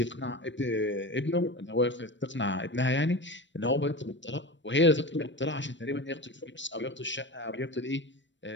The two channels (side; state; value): right; late; 0.53 ms